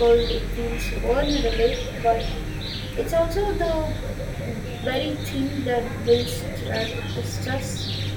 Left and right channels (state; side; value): identical; both; correlation 1.00